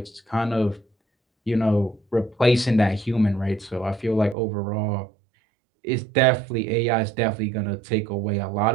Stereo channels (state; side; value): drops out; left; at 4.4 s